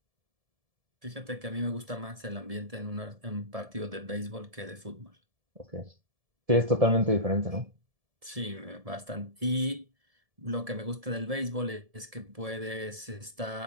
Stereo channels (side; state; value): left; late; 1.7 ms